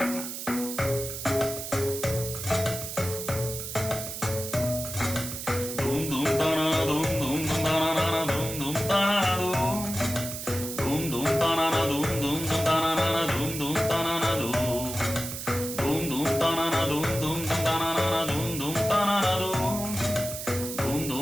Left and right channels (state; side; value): noise; right; hiss, 7 dB below the sound